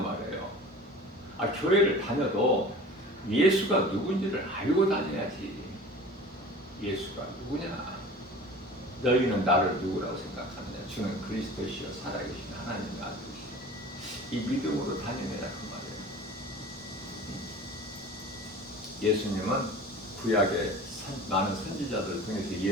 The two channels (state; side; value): normal; both; correlation 0.40